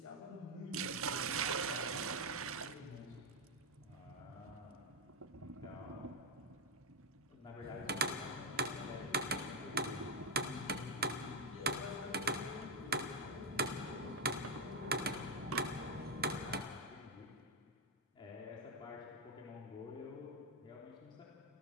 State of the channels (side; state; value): both; normal; correlation 0.02